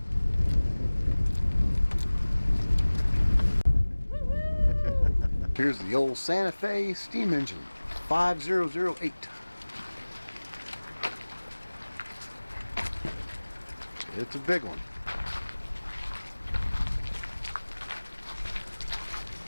Here's the old Santa Fe steam engine, 5008. It's a big one.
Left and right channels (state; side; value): inverted; both; correlation -1.00